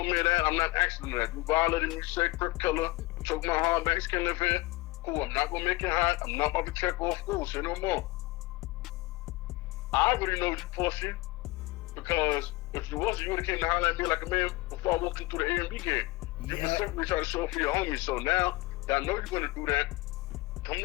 of that. I'm not asking that. You violated me, say Crip Killer, choke my hardbacks, can't live here. Cool, I'm not gonna make it hot. I'm not about to check off. Cool, say no more. I already know you pussy, because if you wasn't, you would have came to holler at me like a man before I walked into the A&B game. You specifically try to show up for your homies. So now that I know you're gonna do that, come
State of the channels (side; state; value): right; quieter; 20.6 dB